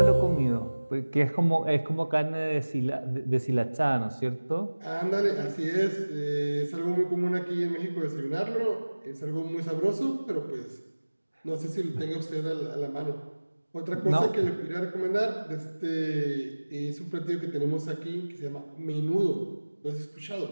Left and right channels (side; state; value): both; inverted; correlation -1.00